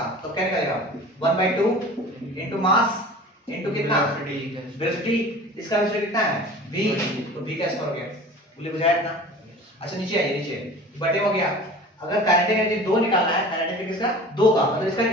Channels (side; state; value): both; normal; correlation 0.41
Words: तो क्या निकालेगा, 1/2 इनटू मास इनटू कितना, वेलोसिटी। इसका वेलोसिटी कितना है, v, तो v कैसे करोगे, बोले बुझाया इतना। अच्छा नीचे आइए, नीचे बटे हो गया। अगर काइनेटिक एनर्जी 2 निकालना है, काइनेटिक किसका, 2 का, मतलब इसका